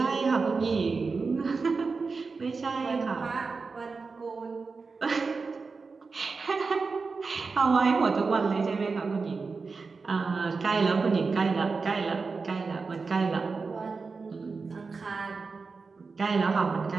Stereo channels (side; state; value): left; quieter; 4.5 dB